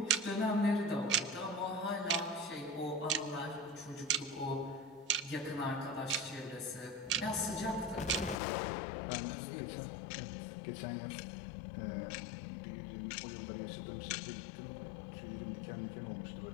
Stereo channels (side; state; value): right; drops out; at 8.3 s